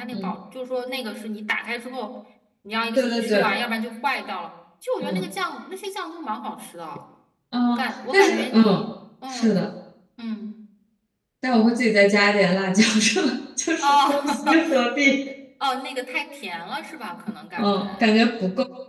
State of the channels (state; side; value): identical; both; correlation 1.00